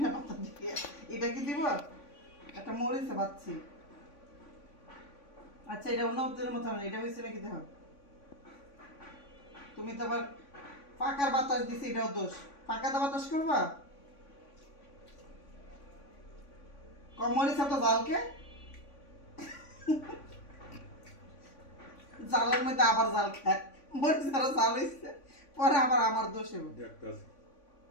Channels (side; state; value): right; late; 3.5 ms